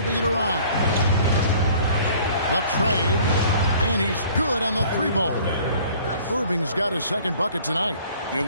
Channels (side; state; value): both; inverted; correlation -0.53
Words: it around. The trade, and he's good on the 3-ball. Irving's got his second bucket tonight.